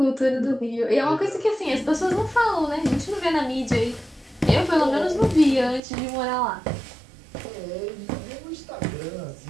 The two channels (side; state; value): left; drops out; at 5.8 s